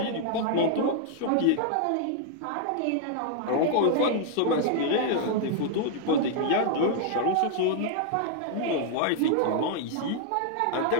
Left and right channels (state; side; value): different; both; correlation -0.01